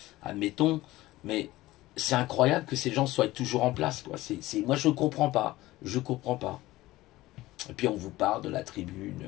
admettons, mais c'est incroyable que ces gens soient toujours en place, quoi. Moi, je ne comprends pas, je comprends pas. Et puis, on vous parle de la tribune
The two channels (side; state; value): right; quieter; 17.7 dB